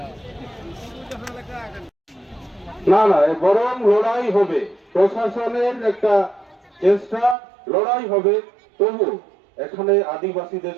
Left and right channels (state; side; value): drops out; left; at 7.4 s